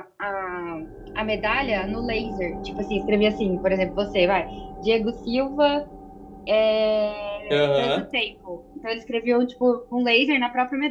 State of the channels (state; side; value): identical; both; correlation 1.00